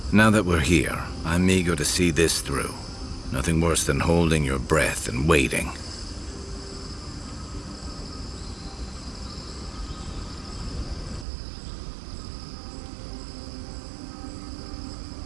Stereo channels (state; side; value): drops out; left; at 11.2 s